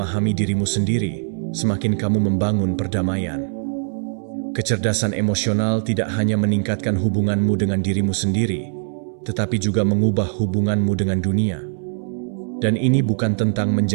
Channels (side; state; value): left; silent; 65 dB below the other